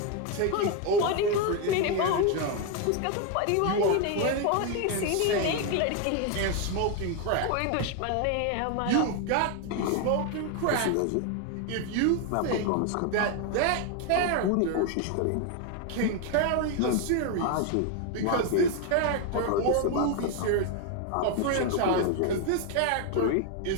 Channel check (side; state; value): both; different; correlation 0.01